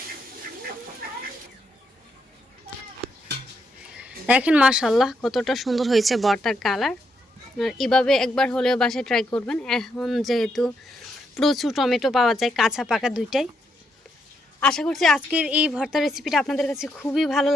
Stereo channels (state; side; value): normal; both; correlation 0.79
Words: দেখেন মাশাআল্লাহ কতটা সুন্দর হয়েছে ভর্তার কালার। আর এভাবে একবার হলেও বাসায় ট্রাই করবেন। এখন যেহেতু প্রচুর টমেটো পাওয়া যায়, কাঁচা পাকা দুইটাই। আশা করছি আজকের এই ভর্তার রেসিপিটা আপনাদের কাছে খুবই ভালো